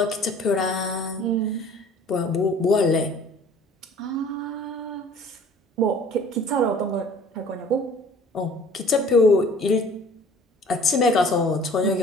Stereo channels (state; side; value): normal; both; correlation 0.50